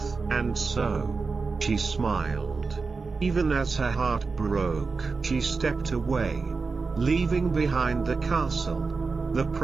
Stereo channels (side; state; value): left; quieter; 4.4 dB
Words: and so, she smiled. Even as her heart broke, she stepped away, leaving behind the castle, the